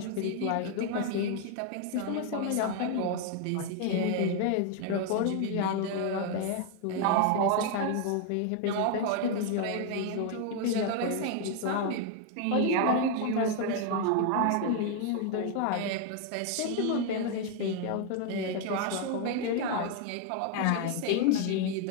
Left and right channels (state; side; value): different; both; correlation 0.00